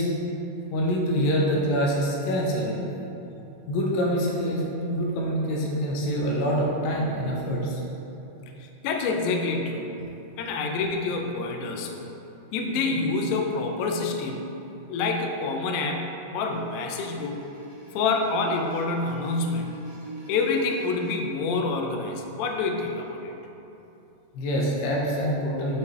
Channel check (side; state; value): right; late; 22 ms